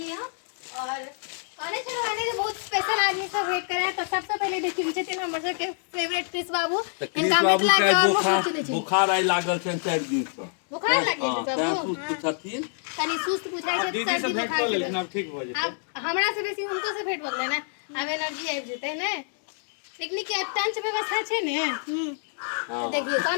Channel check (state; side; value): silent; right; 60 dB below the other